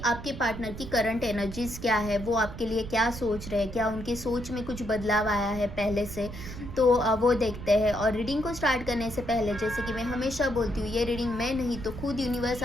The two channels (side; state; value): right; noise; rumble, 11 dB below the sound